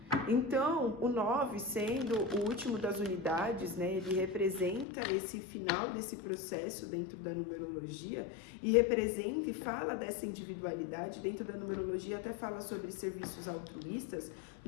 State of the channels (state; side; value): drops out; right; at 4.9 s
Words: Então, o 9, sendo o último das unidades, né, ele representa esse final desse processo dentro da numerologia e representa e fala dessa individualidade dentro da numerologia, até fala sobre serviços altruístas,